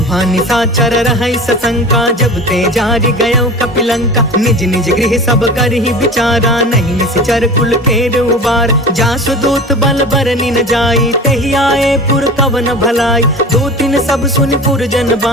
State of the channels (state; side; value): normal; both; correlation 0.35